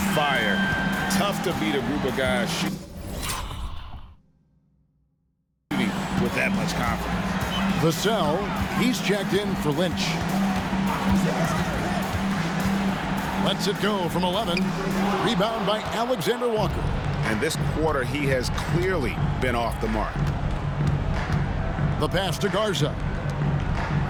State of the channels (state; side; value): identical; both; correlation 1.00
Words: fire. Tough to beat a group of guys shooting with that much confidence. Vassell, he's checked in for Lynch. Lets it go from 11. Rebound by Alexander Walker. And this quarter, he has clearly been off the mark. The pass to Garza.